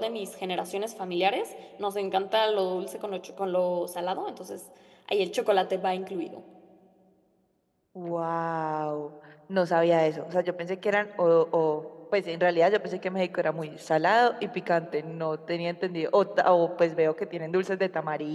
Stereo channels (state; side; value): identical; both; correlation 1.00